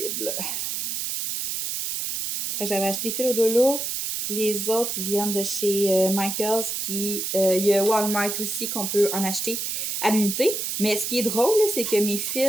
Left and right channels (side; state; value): right; noise; hiss, 2 dB below the sound